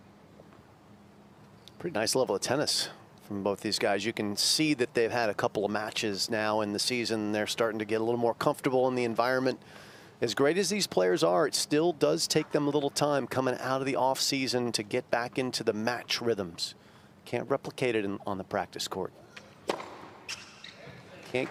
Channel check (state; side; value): identical; both; correlation 1.00